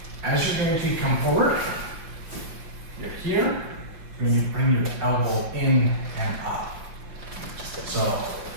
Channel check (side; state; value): left; late; 6.4 ms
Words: As you're going to come forward, you're here, and you bring your elbow in and up. So